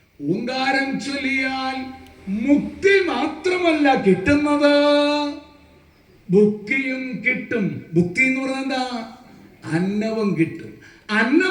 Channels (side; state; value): both; identical; correlation 1.00